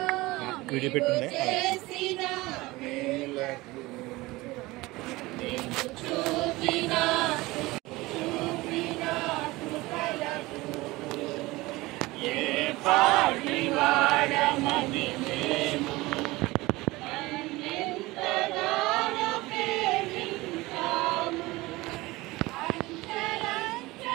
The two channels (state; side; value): quieter; left; 20.6 dB